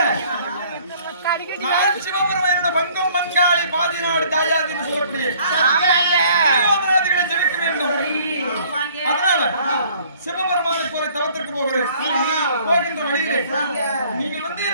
நான் சிவபெருமானோட பங்கம் மங்காளி பாதிநாடு தாயாதின்னு சொல்றேன். ஜெபிக்க வேண்டும். அதனால சிவபெருமானுக்கு ஒரு தவத்திற்கு போகிறேன். போகின்ற வழியிலே நீங்க வந்து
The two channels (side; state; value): both; inverted; correlation -0.57